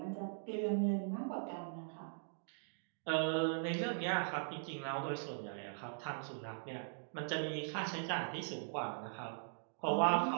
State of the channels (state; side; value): silent; left; digital silence